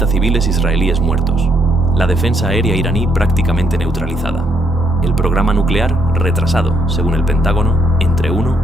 civiles israelíes muertos. La defensa aérea iraní prácticamente neutralizada. El programa nuclear retrasado, según el Pentágono, entre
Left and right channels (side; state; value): both; normal; correlation 0.73